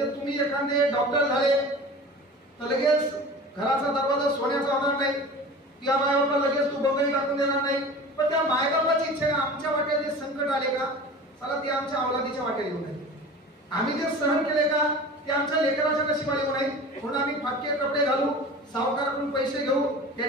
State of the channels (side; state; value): both; normal; correlation 0.37